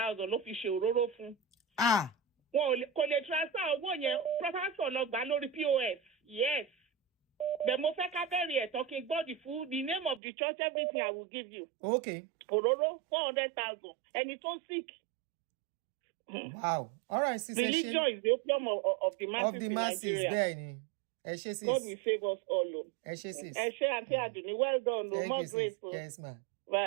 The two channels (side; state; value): left; drops out; at 10.2 s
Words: ló fi ṣe òróró fún. Wọn kò lè transfer owó yẹn, pásítọ̀ lọ gbà lórí POS. Yes. The Mofeka Berry talking about the food, the name of the church, everything I will give you. Okay. Ororo, 400,000. And it's so sick. Wow. All right, Sister Religion is the opium of the masses. Of the masses, Benny. God will save us all. Auntie, well done. No more grateful. Yes, ma'am.